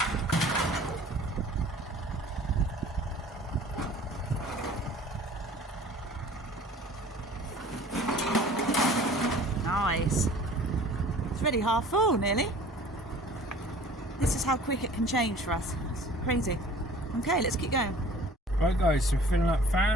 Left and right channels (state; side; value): normal; both; correlation 0.48